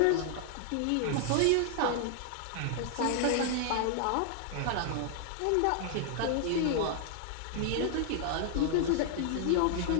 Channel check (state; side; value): different; both; correlation 0.00